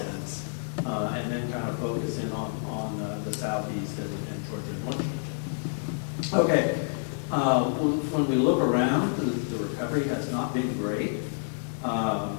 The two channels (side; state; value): right; silent; digital silence